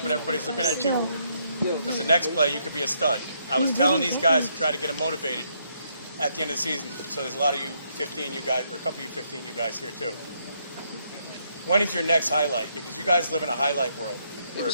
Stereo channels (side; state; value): both; inverted; correlation -0.74